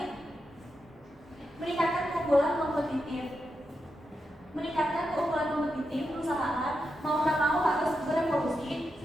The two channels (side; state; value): both; normal; correlation 0.86